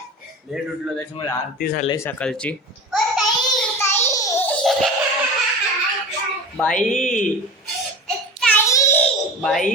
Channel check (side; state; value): both; normal; correlation 0.33